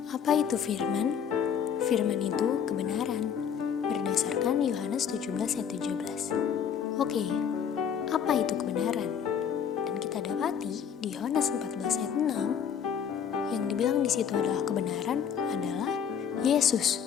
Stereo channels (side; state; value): right; quieter; 7.9 dB